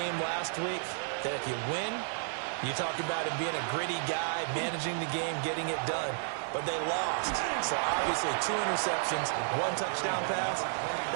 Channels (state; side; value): silent; left; 56 dB below the other